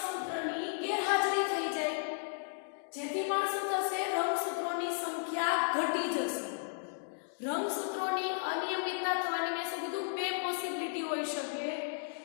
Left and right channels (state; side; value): silent; right; digital silence